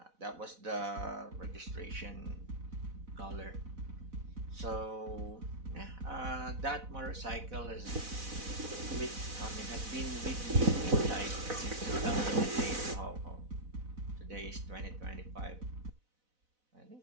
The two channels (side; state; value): left; late; 4.0 ms